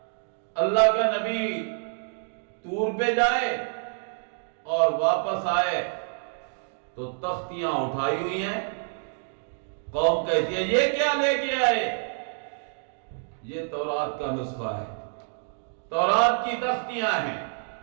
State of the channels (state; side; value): silent; left; 60 dB below the other